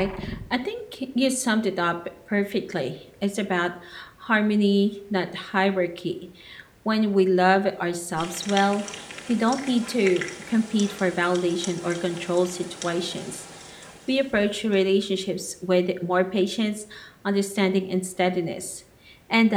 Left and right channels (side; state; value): both; identical; correlation 1.00